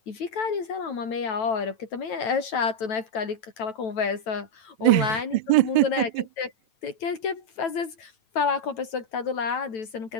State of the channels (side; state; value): right; late; 9.1 ms